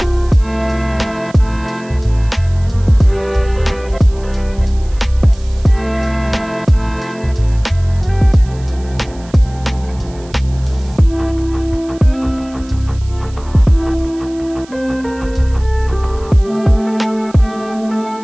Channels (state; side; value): noise; right; hiss, 24 dB below the sound